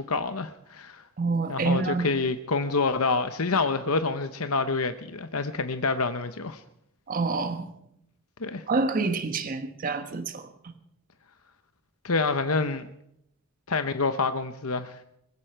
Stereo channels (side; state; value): both; normal; correlation -0.02